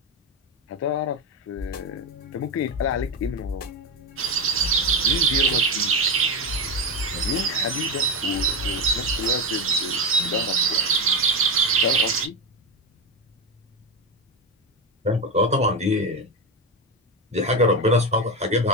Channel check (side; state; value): both; normal; correlation 0.13